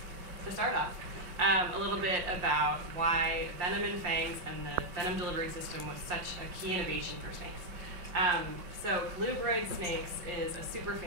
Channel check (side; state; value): left; late; 5.7 ms